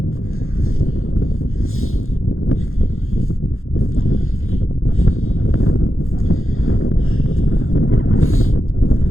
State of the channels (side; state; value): right; late; 0.61 ms